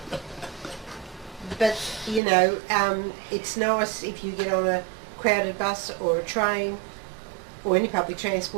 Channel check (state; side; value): drops out; left; at 2.2 s